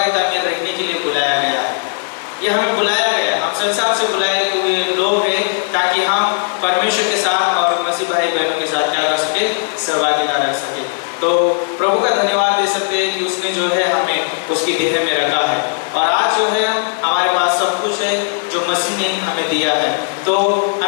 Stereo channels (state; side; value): silent; right; 66 dB below the other